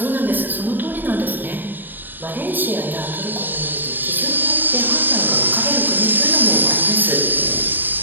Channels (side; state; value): left; late; 0.092 ms